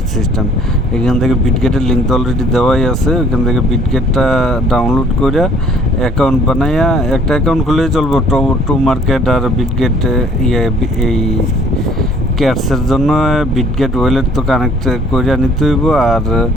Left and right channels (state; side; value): normal; both; correlation 0.57